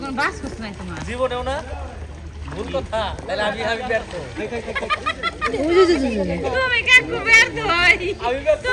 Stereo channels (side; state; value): both; identical; correlation 1.00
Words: বাস কুছ নাই তোমার জীবনেও না ভুল কথা তাহলে আমি ব্যর্থ তুমি কাকু ব্যর্থ হই